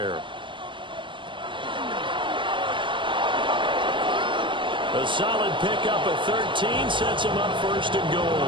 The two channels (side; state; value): left; late; 0.24 ms